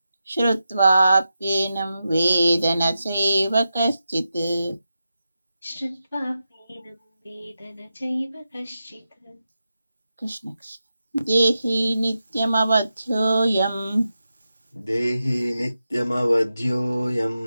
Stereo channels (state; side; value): inverted; both; correlation -0.90